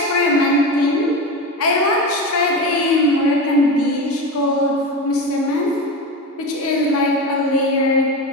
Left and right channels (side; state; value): both; normal; correlation 0.23